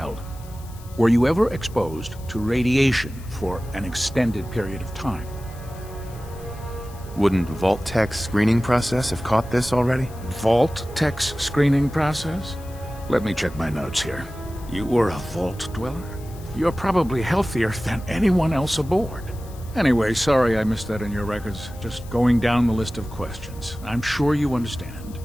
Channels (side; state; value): left; noise; hiss, 22 dB below the sound